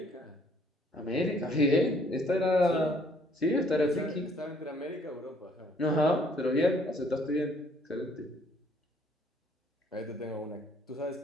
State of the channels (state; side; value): normal; both; correlation 0.63